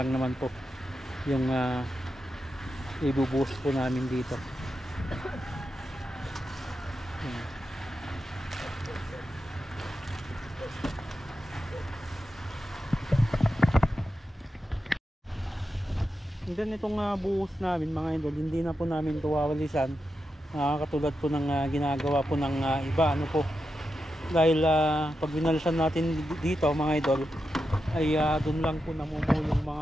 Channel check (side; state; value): both; normal; correlation 0.88